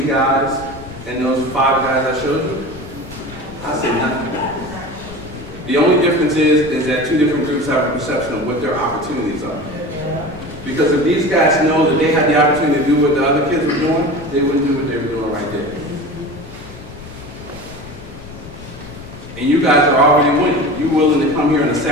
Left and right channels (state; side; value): noise; left; rumble, 16 dB below the sound